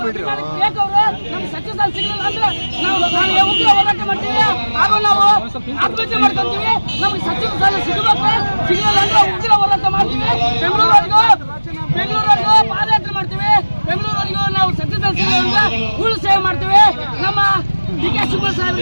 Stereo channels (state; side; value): inverted; both; correlation -1.00